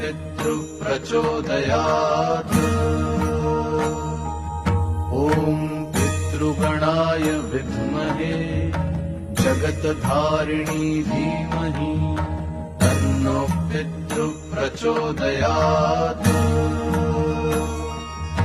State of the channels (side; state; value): both; identical; correlation 1.00